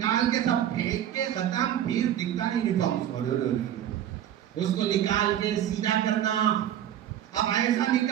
کے سب پھینک کے ختم، پھر دکھتا نہیں یونیفارم. اس کو نکال کے سیدھا کرنا. اب ایسا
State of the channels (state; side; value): quieter; left; 10.8 dB